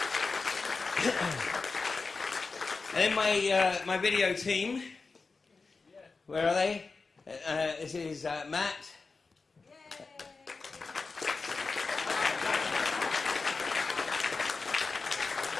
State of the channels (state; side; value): quieter; right; 4.2 dB